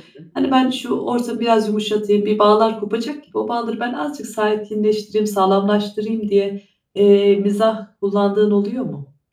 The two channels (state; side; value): identical; both; correlation 1.00